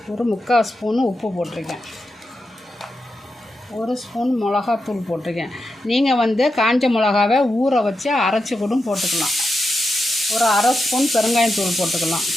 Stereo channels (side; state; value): both; normal; correlation 0.88